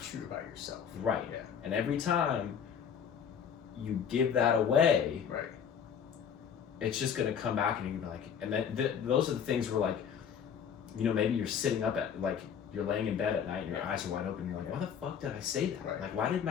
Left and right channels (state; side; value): quieter; right; 7.7 dB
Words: true about yourself. Right. Yeah. And every time you give that away, Right. it's just gonna come back and you're gonna be like, and then those are the things where, like, you know, maybe you're sitting up at, like, you're laying in bed at night and your eyes are wide open and you're like, why the fuck did I say that? Right. Like, why didn't